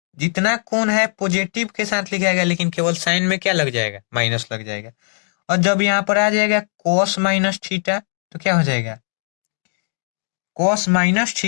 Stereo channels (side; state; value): right; silent; digital silence